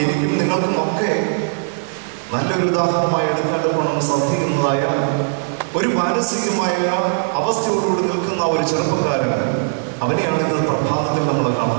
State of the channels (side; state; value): left; silent; digital silence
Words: എനിക്കും നിങ്ങൾക്കും ഒക്കെ നല്ലൊരു ഉദാഹരണമായി എടുക്കേണ്ടപ്പോണം സാധിക്കുന്നതായ ഒരു മാനസികമായ അവസ്ഥയോടുകൂടി നിൽക്കുന്ന ഒരു ചെറുപ്പക്കാരൻ, അവനെയാണ് ഇന്ന് പ്രഭാതത്തിൽ നമ്മൾ